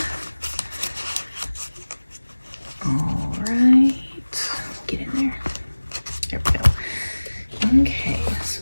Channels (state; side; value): inverted; both; correlation -1.00